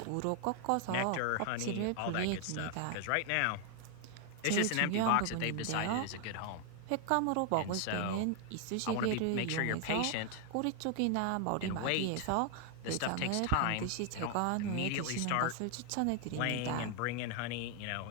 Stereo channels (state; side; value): different; both; correlation 0.00